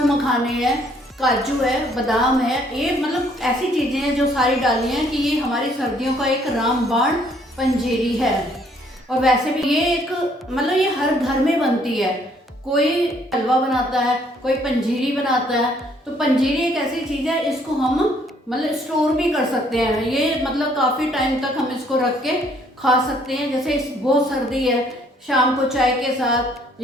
मखाने हैं, काजू है, बादाम है। ये मतलब ऐसी चीज़ें हैं जो सारी डाली हैं कि ये हमारी सर्दियों का एक रामबाण पंजीरी है। और वैसे भी ये एक मतलब ये हर घर में बनती है। कोई हलवा बनाता है, कोई पंजीरी बनाता है। तो पंजीरी एक ऐसी चीज़ है, इसको हम मतलब स्टोर भी कर सकते हैं। ये मतलब काफ़ी टाइम तक हम इसको रख के खा सकते हैं। जैसे बहुत सर्दी है, शाम को चाय के साथ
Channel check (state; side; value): normal; both; correlation 0.64